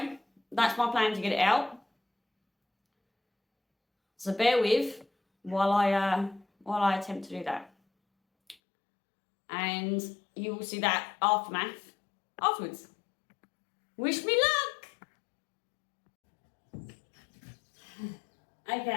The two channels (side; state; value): right; drops out; at 8.6 s